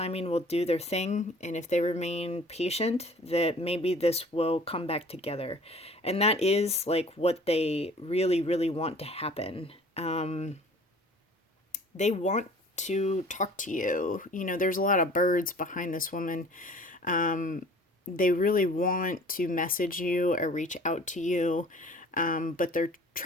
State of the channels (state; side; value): normal; both; correlation 0.49